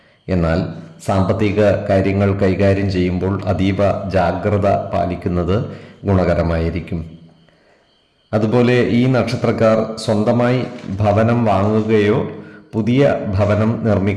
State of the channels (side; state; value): both; identical; correlation 1.00